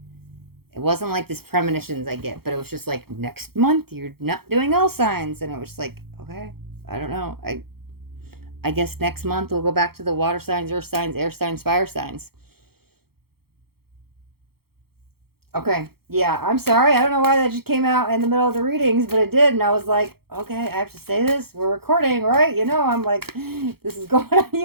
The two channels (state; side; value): late; left; 0.95 ms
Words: It wasn't like this premonitions I get, but it was just like, next month you're not doing all signs, and it was like, okay, I don't know. I guess next month we'll go back to the water signs, earth signs, air signs, fire signs. Okay. Yeah, I'm sorry. I don't know why that just came out in the middle of the readings, but it did. And I was like, okay, I have to say this. We're recording, right? You know, I'm like, this is going on